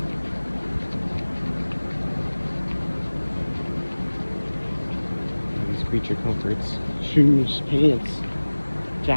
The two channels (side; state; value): both; inverted; correlation -1.00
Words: these creature comforts, shoes, pants,